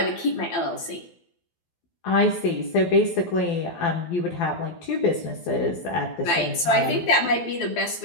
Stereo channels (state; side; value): late; right; 12 ms